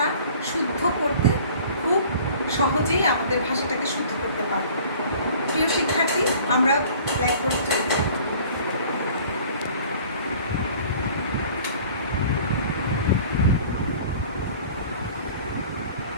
শুদ্ধ করতে খুব সহজেই আমাদের ভাষাটাকে শুদ্ধ করতে পারবো। প্রিয় শিক্ষার্থী, আমরা ব্ল্যাকবোর্ডে চলে যাব।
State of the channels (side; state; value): both; inverted; correlation -0.49